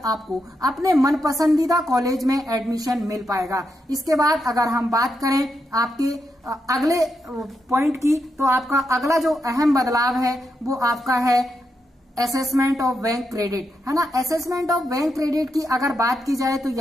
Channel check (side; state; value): both; normal; correlation 0.83